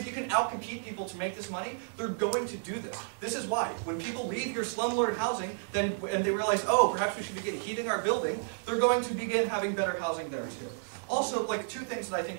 you can outcompete people to make this money, they're going to do this. This is why when people leave your slumlord housing, and they realize, oh, perhaps we should begin heating our building, they're going to begin having better housing there too. Also, like two things that I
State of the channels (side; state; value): left; silent; 57 dB below the other